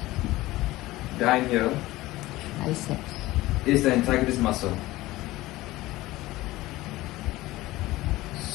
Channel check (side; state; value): right; quieter; 18.1 dB